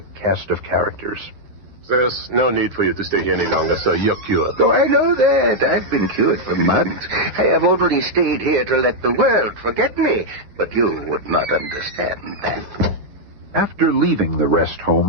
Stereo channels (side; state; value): left; late; 9.7 ms